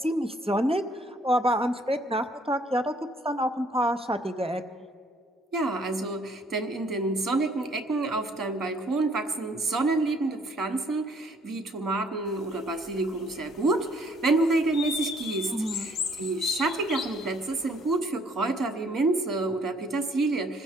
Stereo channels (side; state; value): both; normal; correlation 0.62